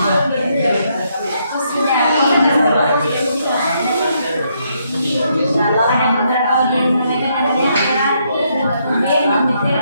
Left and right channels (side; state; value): both; inverted; correlation -0.75